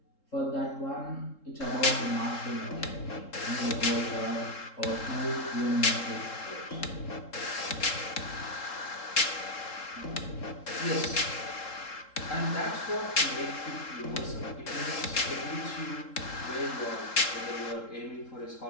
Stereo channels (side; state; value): right; late; 3.7 ms